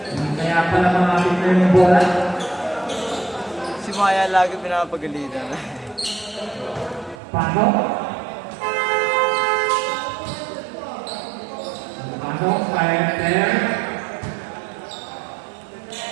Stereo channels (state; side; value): drops out; left; at 7.2 s